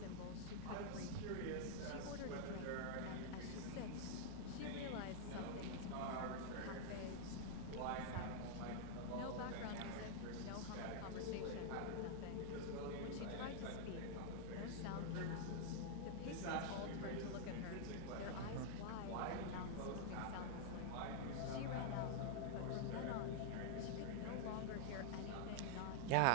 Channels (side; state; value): both; different; correlation -0.01